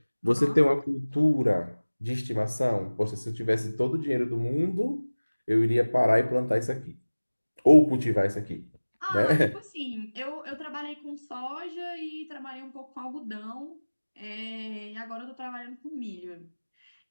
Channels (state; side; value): inverted; both; correlation -1.00